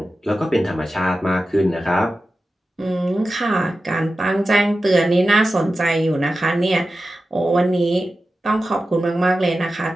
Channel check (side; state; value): both; normal; correlation 0.93